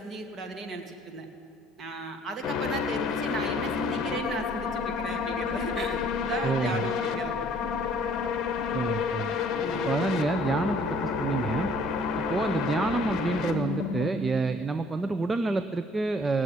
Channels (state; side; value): normal; both; correlation 0.57